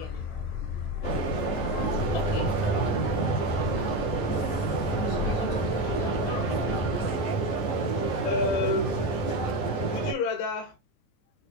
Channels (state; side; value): late; right; 20 ms